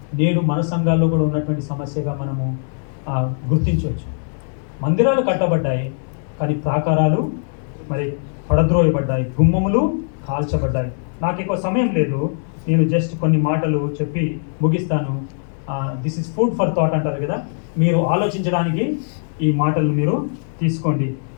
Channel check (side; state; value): right; silent; digital silence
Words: నేడు మన సంఘాల్లో కూడా ఉన్నటువంటి సమస్యగా మనము గుర్తించవచ్చు. మందిరాలు కట్టబడ్డాయి, కానీ ప్రాకారాలు మరి పడద్రోయబడ్డాయి, గుమ్మములు కాల్చబడ్డాయి. నాకు ఎక్కువ సమయం లేదు, నేను జస్ట్ కొన్ని మాటలు చెప్పి ముగిస్తాను. This is food for thought అంటారు కదా, మీరు ఆలోచించడానికి ఈ మాటలు మీరు తీసుకోండి.